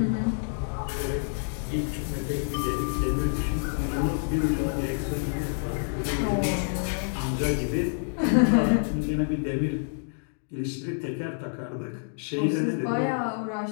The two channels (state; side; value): silent; right; digital silence